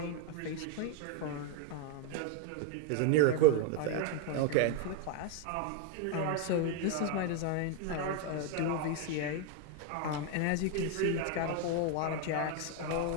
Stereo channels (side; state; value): both; different; correlation 0.01